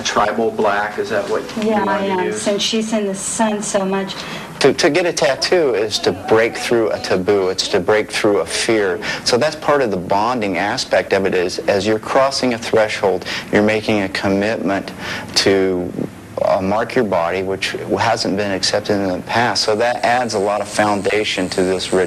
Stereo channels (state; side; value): identical; both; correlation 1.00